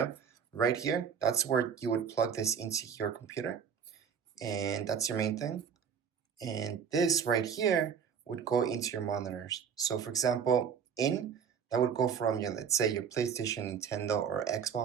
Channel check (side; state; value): left; quieter; 7.2 dB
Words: right here, that's where you would plug this into your computer. And that's your main thing. And this right here would go into your monitors. So for example, that would go from your, let's say your PlayStation, Nintendo, or